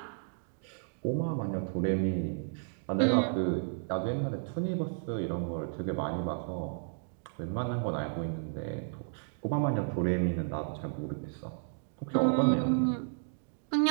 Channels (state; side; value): silent; left; digital silence